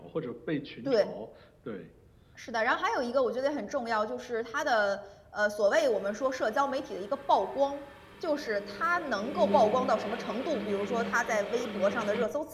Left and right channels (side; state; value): both; identical; correlation 1.00